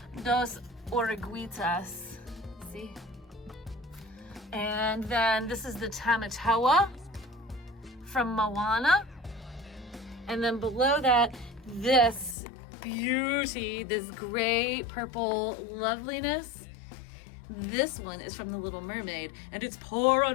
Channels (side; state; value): right; drops out; at 12.4 s